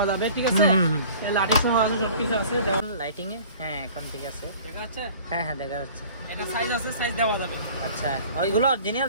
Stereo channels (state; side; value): inverted; both; correlation -0.47